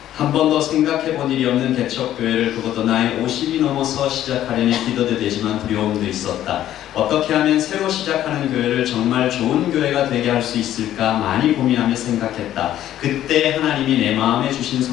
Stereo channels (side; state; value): right; quieter; 12.3 dB